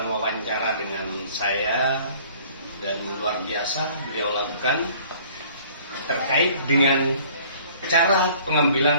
wawancara dengan saya, dan luar biasa beliau lakukan terkait dengan cara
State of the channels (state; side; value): inverted; both; correlation -0.53